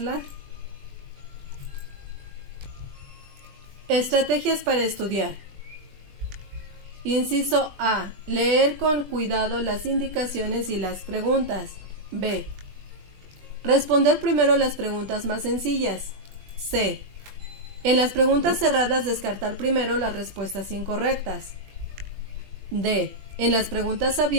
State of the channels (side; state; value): left; late; 20 ms